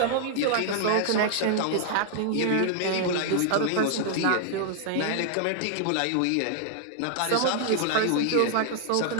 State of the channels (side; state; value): both; different; correlation 0.00